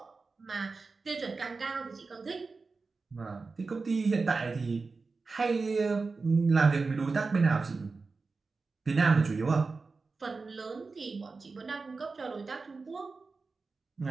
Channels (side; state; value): left; quieter; 4.2 dB